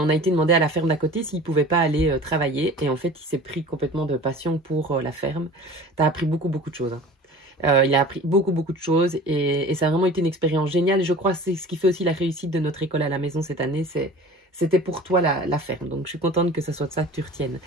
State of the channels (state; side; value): normal; both; correlation 0.41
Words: a été demandé à la ferme d'à côté s'il ne pouvait pas aller travailler. Et en fait, il s'est pris complètement de passion pour la ferme. Tu as appris beaucoup de choses. Hein. Il a appris beaucoup de choses et ça a vraiment été une expérience géniale. Et je crois que c'est ce qui fait aussi la réussite de notre école à la maison cette année. C'était pour toi la ferme. Donc, je suis contente que ça soit de ça que tu retiennes.